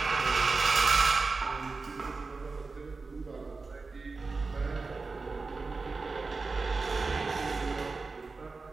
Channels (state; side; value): quieter; left; 4.0 dB